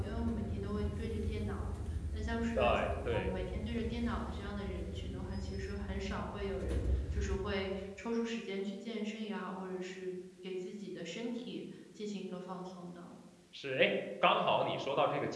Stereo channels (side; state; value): both; identical; correlation 1.00